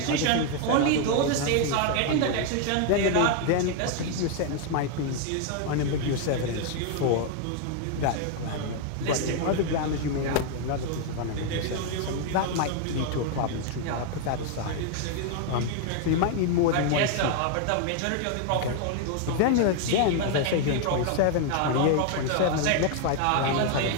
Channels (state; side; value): different; both; correlation 0.00